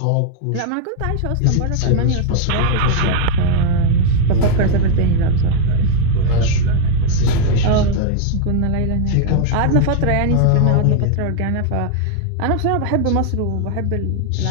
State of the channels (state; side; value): different; both; correlation 0.00